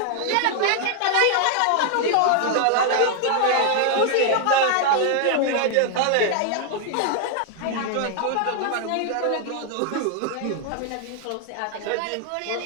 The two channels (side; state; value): both; different; correlation 0.00